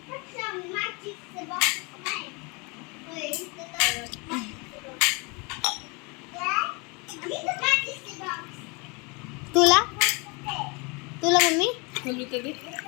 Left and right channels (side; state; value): right; quieter; 29.8 dB